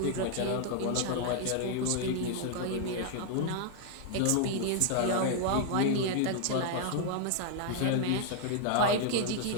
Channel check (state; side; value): different; both; correlation -0.01